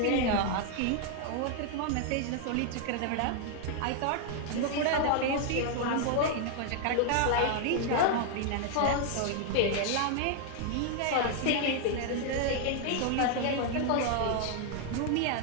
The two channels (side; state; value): both; different; correlation 0.00